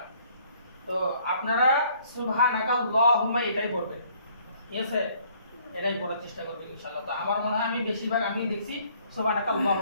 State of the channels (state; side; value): inverted; both; correlation -0.62